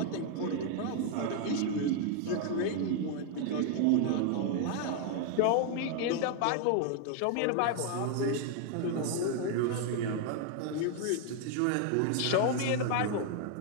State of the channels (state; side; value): different; both; correlation 0.00